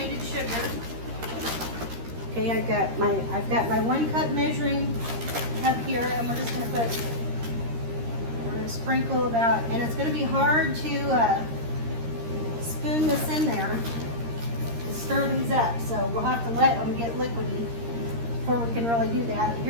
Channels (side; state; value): left; late; 13 ms